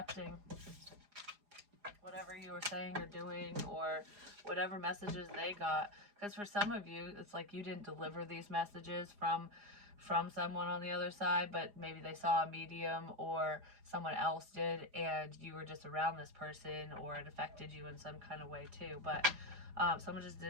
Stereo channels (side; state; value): left; late; 4.9 ms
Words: whatever you were saying or doing, or whatever messages they got. Because for some of you, it's like you didn't deliver these messages from someone on the other side, but maybe they saw a medium or someone else did, and you were just around this person, or it affected you in some kind of way too. But someone just